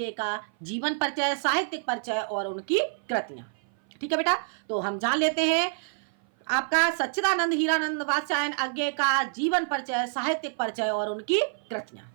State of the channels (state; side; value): silent; left; 56 dB below the other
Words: का जीवन परिचय, साहित्यिक परिचय और उनकी कृतियां। ठीक है बेटा, तो हम जान लेते हैं आपका सच्चिदानंद हीरानंद वात्स्यायन अज्ञे का जीवन परिचय, साहित्यिक परिचय और उनकी कृतियां।